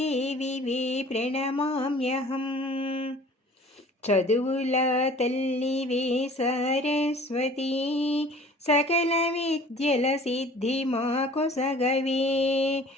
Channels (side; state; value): both; normal; correlation 0.48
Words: वे प्रणमाम्यहम् చదువుల తల్లివే సరస్వతి సకల విద్యల సిద్ధి మాకొసగవే